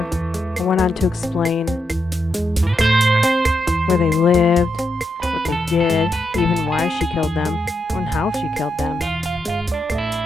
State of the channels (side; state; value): both; normal; correlation 0.84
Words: and went on to explain where they lived, what they did, even why she killed them, and how she killed them.